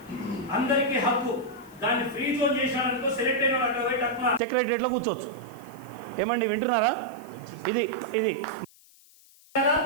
అందరికీ హక్కు. దాన్ని ఫ్రీ జోన్ చేశాడనుకో, సెలెక్ట్ అయిన అక్కడ పోయి తక్కువ సెక్రటరియట్లో కూర్చోవచ్చు. ఏమండి వింటున్నారా? ఇది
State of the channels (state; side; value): noise; left; hiss, 26 dB below the sound